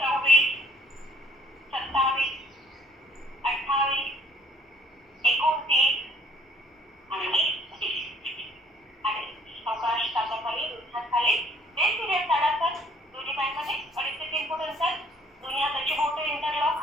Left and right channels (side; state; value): both; normal; correlation 0.60